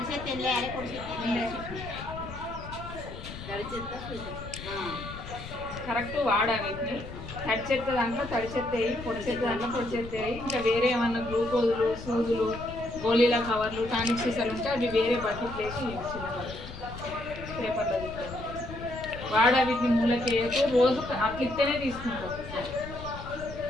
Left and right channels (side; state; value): left; noise; rumble, 12 dB below the sound